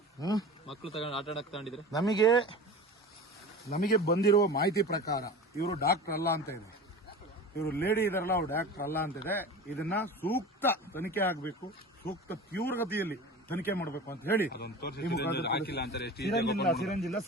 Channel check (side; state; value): both; normal; correlation 0.34